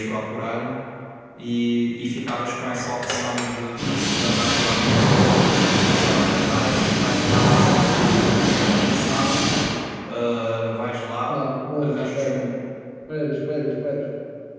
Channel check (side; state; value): both; identical; correlation 1.00